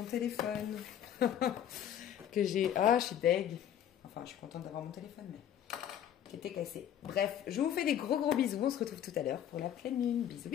téléphone. Que j'ai... Ah, je suis deg. Enfin, je suis contente d'avoir mon téléphone, mais qui était cassé. Bref, je vous fais des gros bisous. On se retrouve tout à l'heure pour la pleine lune. Bisous,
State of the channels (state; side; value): quieter; right; 10.1 dB